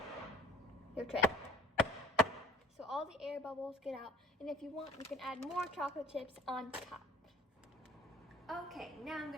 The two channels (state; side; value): normal; both; correlation 0.50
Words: your tray so all the air bubbles get out, and if you want, you can add more chocolate chips on top. Okay, now I'm